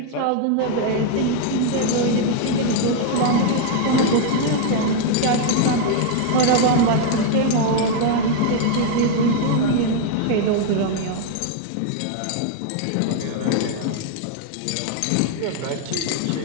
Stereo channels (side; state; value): both; different; correlation 0.00